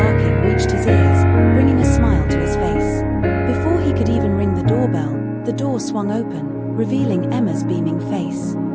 reached his ears, bringing a smile to his face. Before he could even ring the doorbell, the door swung open, revealing Emma's beaming face.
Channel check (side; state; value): both; identical; correlation 1.00